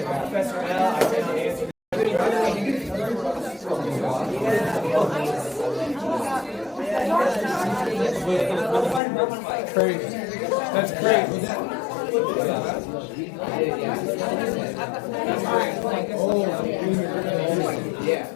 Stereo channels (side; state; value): right; drops out; at 9.0 s